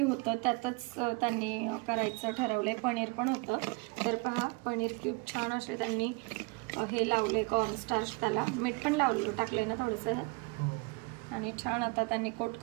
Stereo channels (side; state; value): left; quieter; 27.3 dB